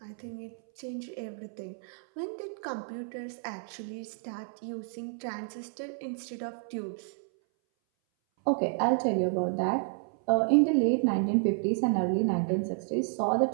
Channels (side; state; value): left; silent; 57 dB below the other